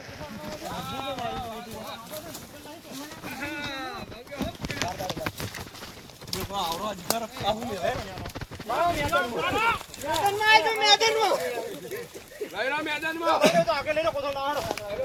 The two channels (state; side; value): identical; both; correlation 1.00